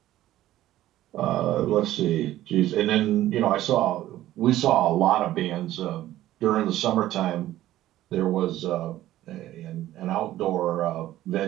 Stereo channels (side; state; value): left; quieter; 14.2 dB